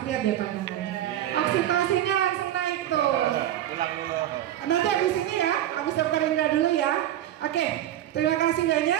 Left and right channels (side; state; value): left; quieter; 12.4 dB